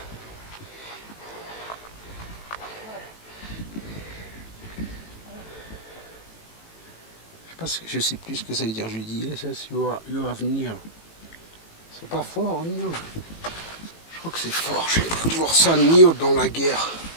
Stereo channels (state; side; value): late; right; 18 ms